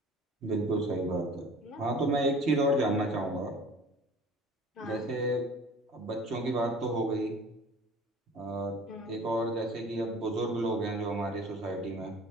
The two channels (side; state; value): both; normal; correlation 0.45